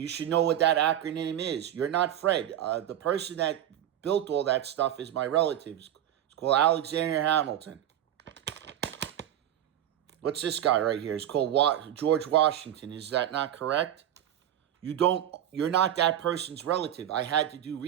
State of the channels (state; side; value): quieter; left; 11.2 dB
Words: should know what that acronym is, you're not Fred. The person that built all that stuff is my relative. It's called Alexander Hamilton. What's this guy right here? It's called George Washington. Is that not correct? You're not that person's relative. I had to do